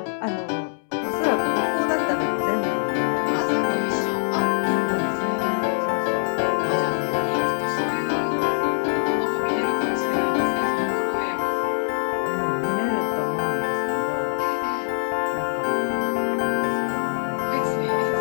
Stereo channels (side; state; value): right; silent; digital silence